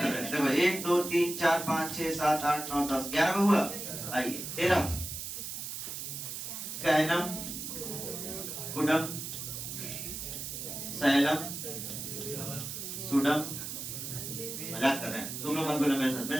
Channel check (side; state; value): right; noise; hiss, 6 dB below the sound